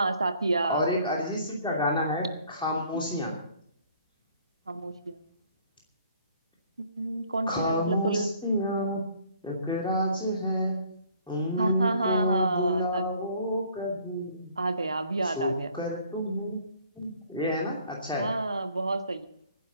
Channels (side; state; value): both; inverted; correlation -0.58